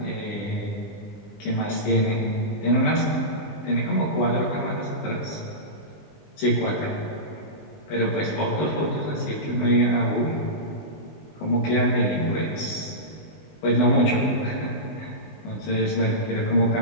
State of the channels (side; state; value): right; late; 20 ms